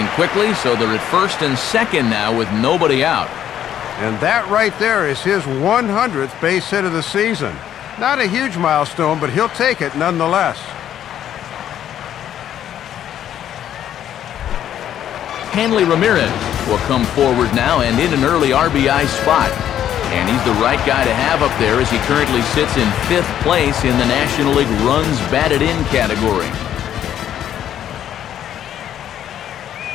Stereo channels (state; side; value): quieter; right; 10.6 dB